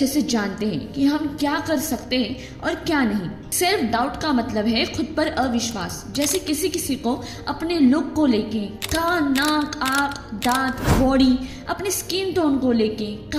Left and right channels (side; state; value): both; identical; correlation 1.00